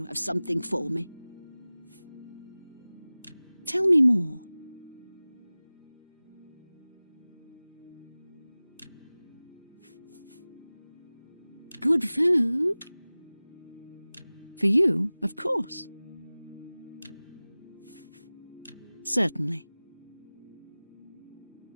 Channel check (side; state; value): both; inverted; correlation -0.99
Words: have something for me. Tell me more. Good food? For you, of course. Certainly.